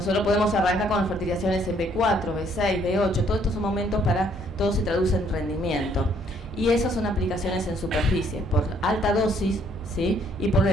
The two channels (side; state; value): both; normal; correlation 0.66